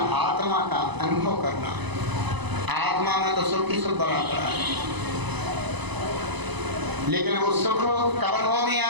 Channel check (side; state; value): left; late; 1.0 ms